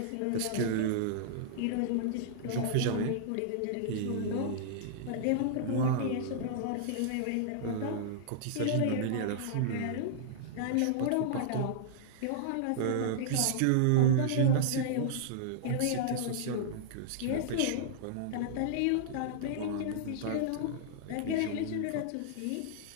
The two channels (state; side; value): different; both; correlation -0.01